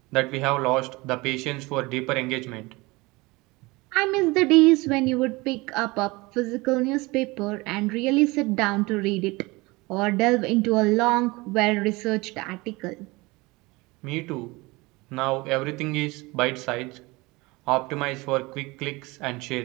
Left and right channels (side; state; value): left; quieter; 23.3 dB